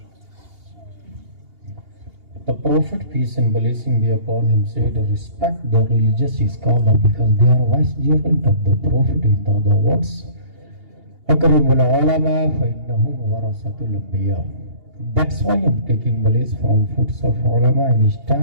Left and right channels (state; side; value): late; left; 2.8 ms